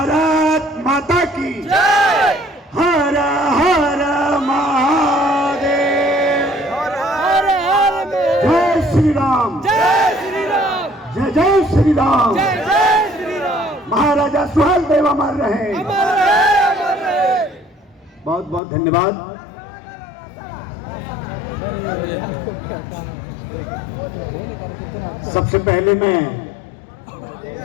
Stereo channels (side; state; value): right; drops out; at 18.6 s